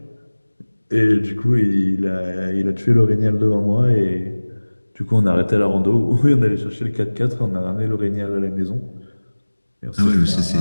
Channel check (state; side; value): inverted; both; correlation -1.00